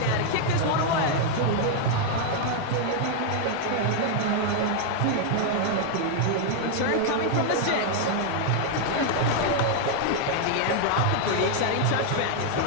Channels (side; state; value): both; different; correlation 0.00